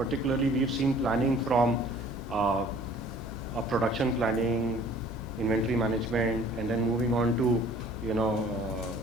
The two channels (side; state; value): left; noise; hum, 13 dB below the sound